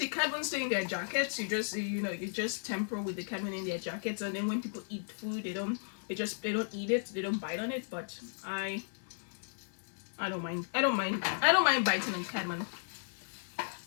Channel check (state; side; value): silent; right; digital silence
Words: cardamom stay in their jackets. You just temper with the cardamom in their jackets, and then when people eat food, they don't eat it. They don't bite on it. But I don't mind. I don't mind biting on cardamom.